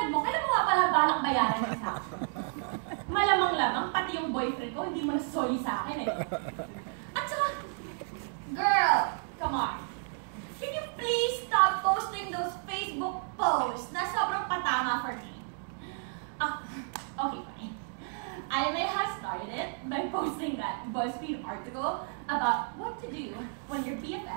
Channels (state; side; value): silent; left; 57 dB below the other